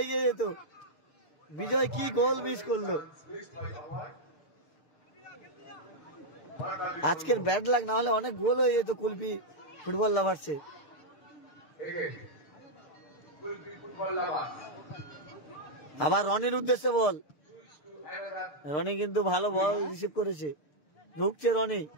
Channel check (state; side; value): late; right; 6.7 ms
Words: এগিয়ে যেত, বিজয় কি গোল মিস করলো। আজকের ব্যাড লাক, না হলে অনেক গোল হয়ে যেত কুলপি ফুটবল লাভার্সে। আবার রনির উদ্দেশ্যে বল, রনি কিন্তু ভালো বল রিসিভ করেছে, ঢুকছে রনি।